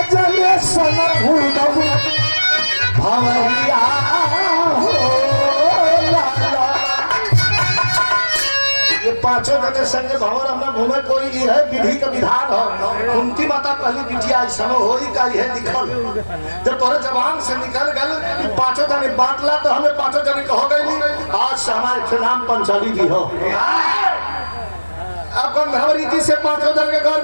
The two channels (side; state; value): both; inverted; correlation -1.00